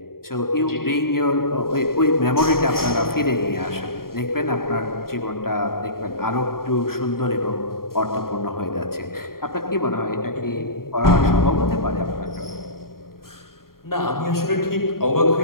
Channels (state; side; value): late; right; 0.92 ms